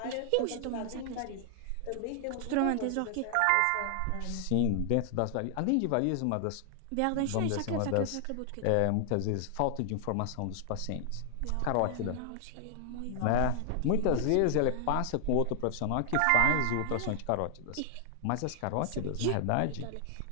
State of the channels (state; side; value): different; both; correlation 0.00